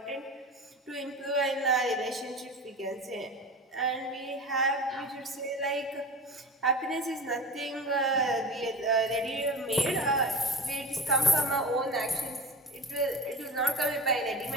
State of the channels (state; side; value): normal; both; correlation 0.31